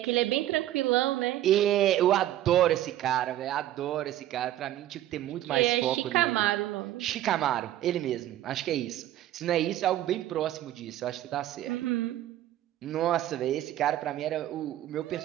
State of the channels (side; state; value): left; quieter; 13.3 dB